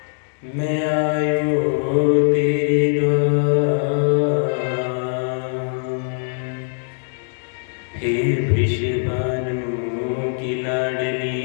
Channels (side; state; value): right; silent; digital silence